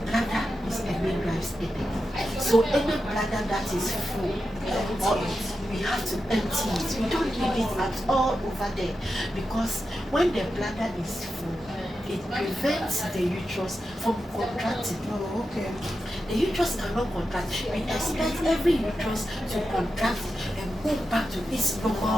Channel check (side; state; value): both; normal; correlation 0.89